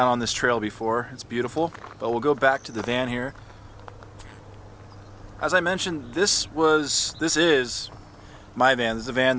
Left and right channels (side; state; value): both; identical; correlation 1.00